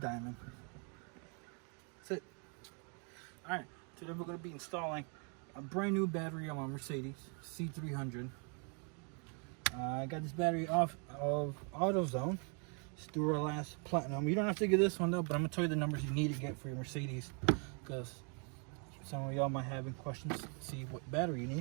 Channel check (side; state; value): left; quieter; 38.1 dB